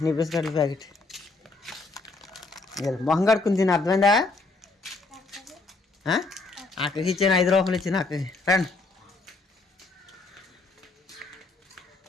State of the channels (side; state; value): right; quieter; 3.5 dB